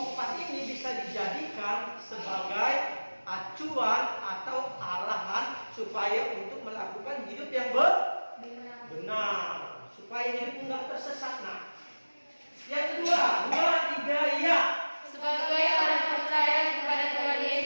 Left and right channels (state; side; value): inverted; both; correlation -1.00